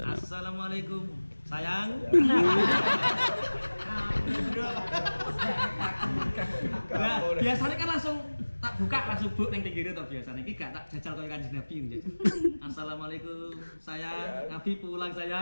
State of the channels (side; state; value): both; inverted; correlation -1.00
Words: Assalamualaikum. Sayang. Nah, biasanya kan langsung tak buka langsung buk ning pinggire to biasane. Iki gak tak jajal koyo Kanjeng Nabi njajal. Assalamualaikum. Sayang, Nabi pulang